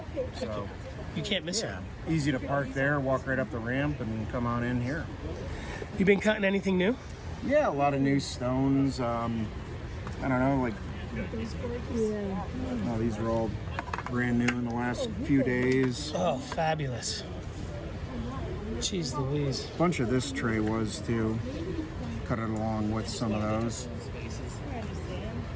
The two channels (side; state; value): both; identical; correlation 1.00